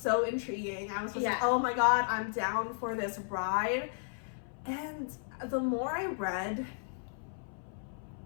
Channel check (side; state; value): right; silent; 55 dB below the other